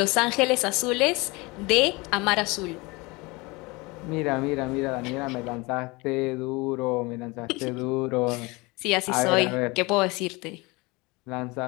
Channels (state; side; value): quieter; right; 24.9 dB